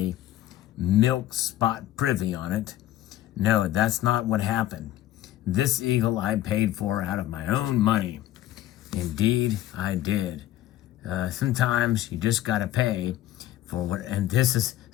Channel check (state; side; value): quieter; right; 13.7 dB